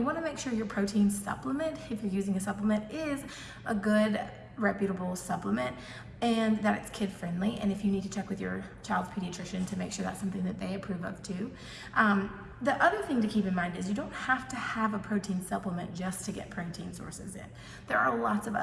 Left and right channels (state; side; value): identical; both; correlation 1.00